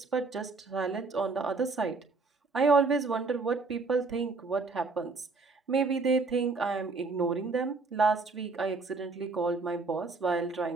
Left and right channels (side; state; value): left; quieter; 4.0 dB